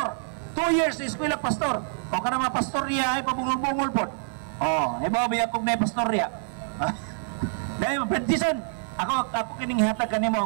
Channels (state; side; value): silent; left; digital silence